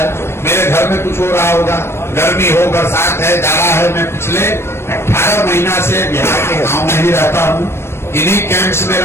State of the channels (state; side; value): late; right; 0.12 ms